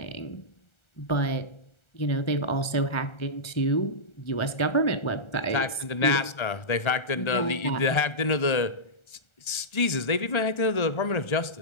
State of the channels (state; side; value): late; right; 1.3 ms